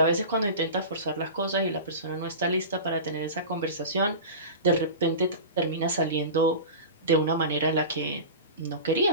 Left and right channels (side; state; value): both; inverted; correlation -0.31